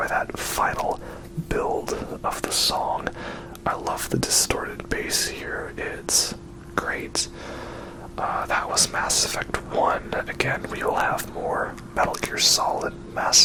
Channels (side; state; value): both; identical; correlation 1.00